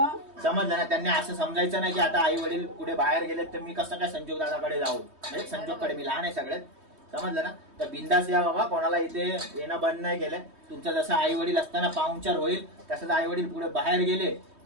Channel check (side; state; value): left; late; 3.2 ms